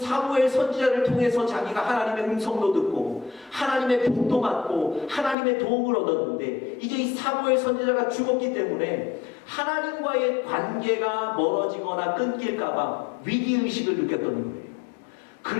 선지자를 통해서 자기가 하나님의 음성도 듣고 하나님의 복도 받고 하나님의 도움을 얻었는데, 이제 이 사무엘 선지자가 죽었기 때문에 하나님과의 관계가 멀어지거나 끊길까봐 위기의식을 느꼈던 거예요.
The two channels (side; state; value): right; drops out; at 5.4 s